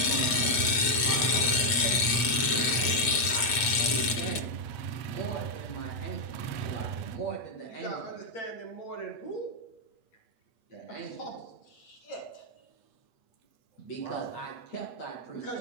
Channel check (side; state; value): right; late; 8.3 ms